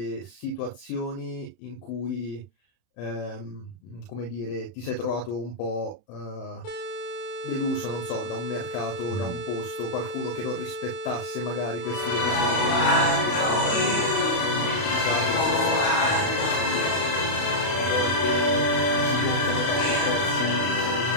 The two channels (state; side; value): late; right; 31 ms